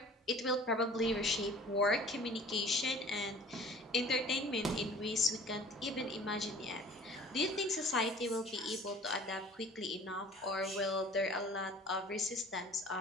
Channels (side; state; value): both; normal; correlation 0.47